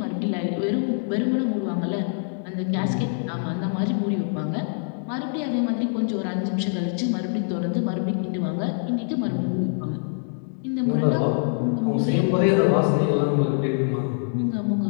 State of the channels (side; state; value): right; silent; digital silence